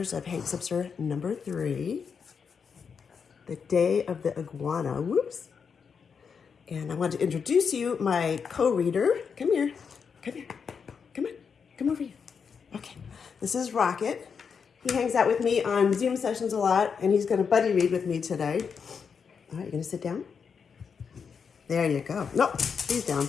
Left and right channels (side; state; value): right; quieter; 6.2 dB